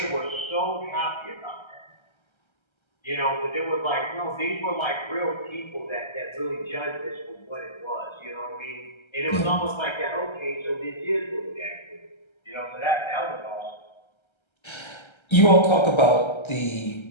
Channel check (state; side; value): late; right; 1.3 ms